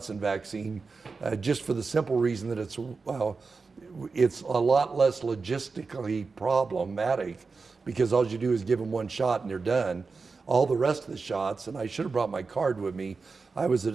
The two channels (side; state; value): left; quieter; 4.4 dB